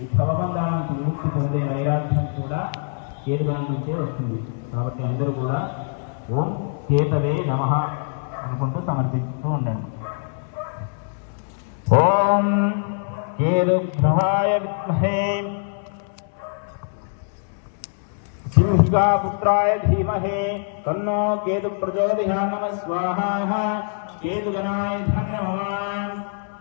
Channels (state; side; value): silent; right; 63 dB below the other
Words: ఈ భవబంధాల నుంచి విముక్తి పొందే వైరాగ్యం కూడా కేతుగణం నుంచే వస్తుంది. కాబట్టి అందరూ కూడా ఓం కేతవే నమః అనుకుంటూ సమర్పిస్తూ ఉండండి. ఓం కేతుగ్రహాయ విద్మహే సింహికాపుత్రాయ ధీమహి తన్నో కేతు ప్రచోదయాత్. నమః స్వాహా. కేతుగణాయ నమః